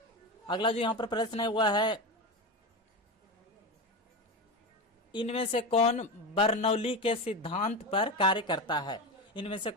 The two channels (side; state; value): both; normal; correlation 0.20